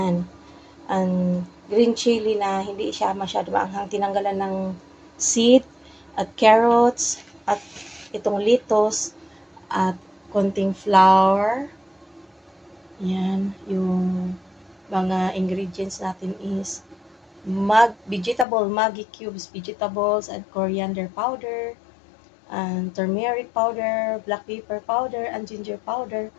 And green chili na hindi siya masyado maanghang. Tinanggalan ng seed at carrots at itong lettuce at konting flour. Yan, yung mga ingredients natin is Maggi cubes, vegetables, and coriander powder, and turmeric powder, black pepper powder, and ginger powder.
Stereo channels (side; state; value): right; drops out; at 18.4 s